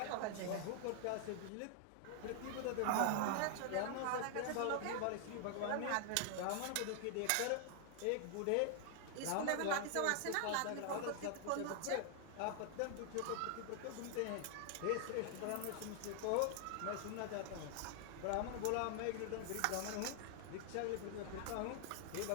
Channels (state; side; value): different; both; correlation 0.00